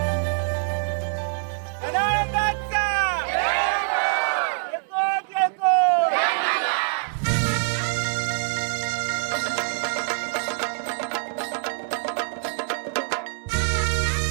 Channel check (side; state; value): left; silent; digital silence